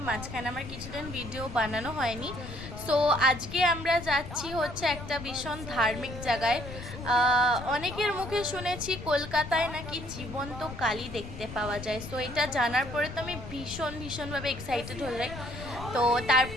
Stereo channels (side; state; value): left; noise; rumble, 11 dB below the sound